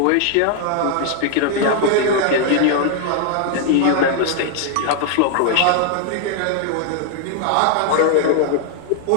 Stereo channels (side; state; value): both; different; correlation 0.00